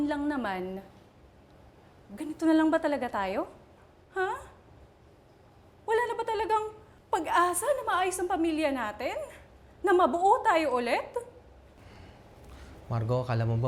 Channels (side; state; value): both; identical; correlation 1.00